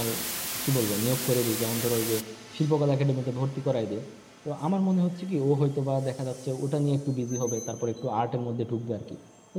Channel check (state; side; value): identical; both; correlation 1.00